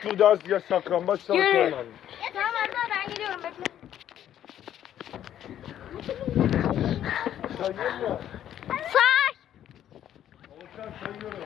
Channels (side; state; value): right; quieter; 10.9 dB